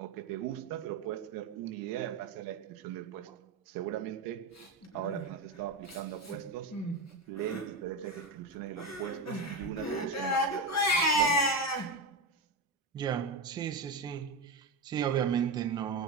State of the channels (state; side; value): quieter; left; 3.2 dB